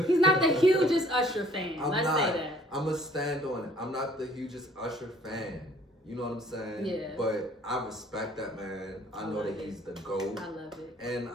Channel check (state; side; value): normal; both; correlation 0.57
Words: He's not the hugest Usher fan. Let's say that. I'm going to stand on it. I'm not the hugest Usher fan. You know what I'm saying? Yeah. But I respect that man. I know that he's the GOAT. I love it. And